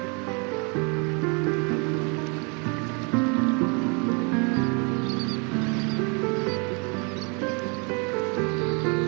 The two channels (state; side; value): quieter; left; 33.8 dB